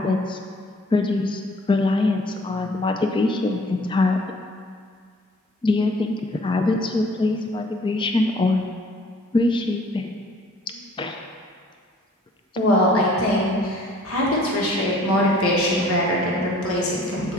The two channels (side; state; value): both; normal; correlation 0.54